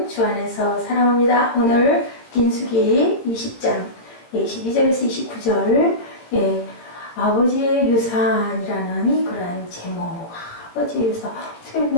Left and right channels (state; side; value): late; right; 17 ms